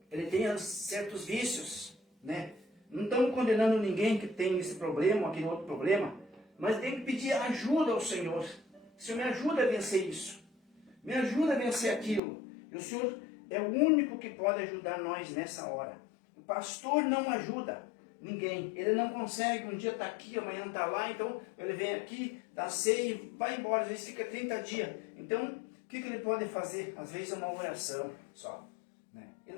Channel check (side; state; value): right; drops out; at 12.2 s